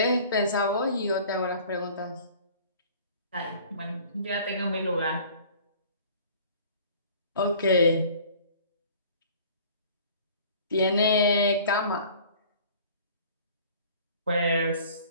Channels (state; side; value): inverted; both; correlation -0.49